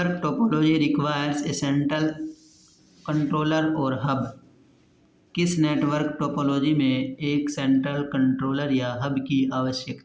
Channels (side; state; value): both; identical; correlation 1.00